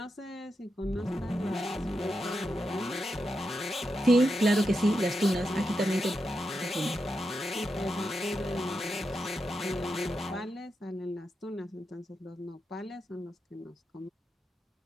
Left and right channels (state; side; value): normal; both; correlation 0.87